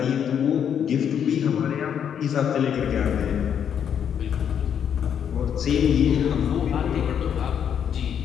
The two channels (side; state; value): right; quieter; 8.5 dB